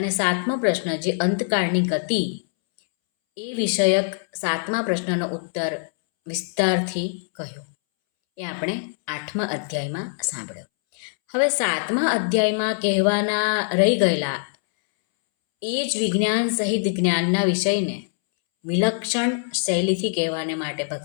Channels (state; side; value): silent; right; 63 dB below the other